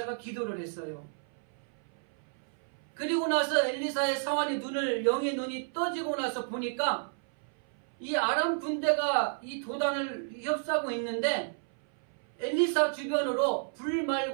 기도를 했어요. 그리고 나서 엘리사의 사환의 영의 눈이 떠지고 나서 보니까 이 아람 군대가 이 도단을 휩싸고 있는데 엘리사 주변으로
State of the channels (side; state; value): left; silent; 57 dB below the other